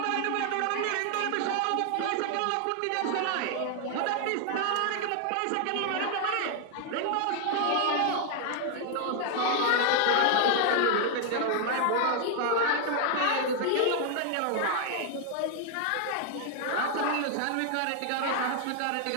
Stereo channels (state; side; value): different; both; correlation 0.00